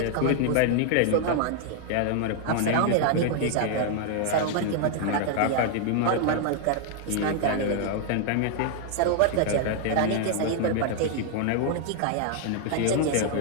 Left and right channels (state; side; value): different; both; correlation 0.00